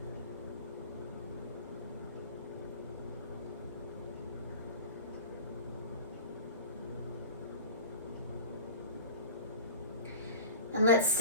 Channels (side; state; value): both; inverted; correlation -0.40